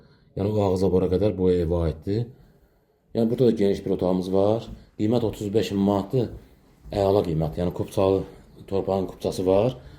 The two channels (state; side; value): identical; both; correlation 1.00